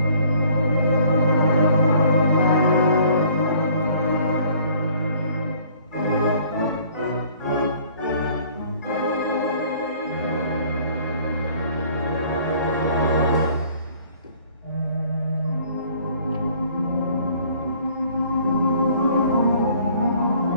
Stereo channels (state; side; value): inverted; both; correlation -0.57